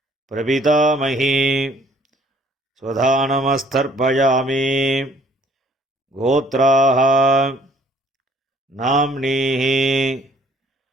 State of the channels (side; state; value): both; normal; correlation 0.60